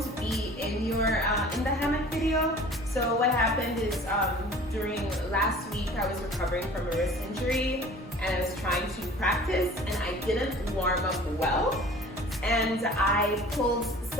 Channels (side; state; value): both; normal; correlation 0.46